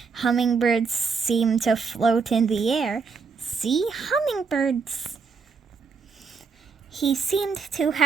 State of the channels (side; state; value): left; quieter; 5.2 dB